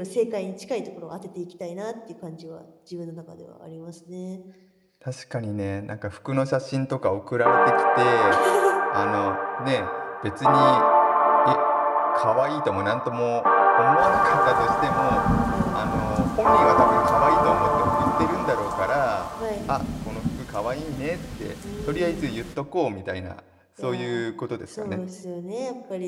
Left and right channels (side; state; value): both; identical; correlation 1.00